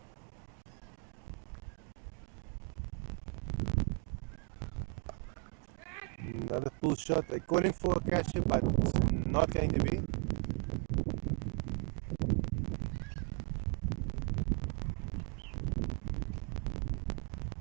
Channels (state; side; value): quieter; left; 35.7 dB